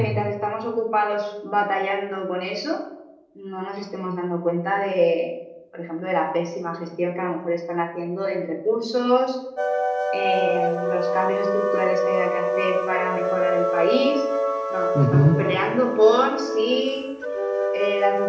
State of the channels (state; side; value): identical; both; correlation 1.00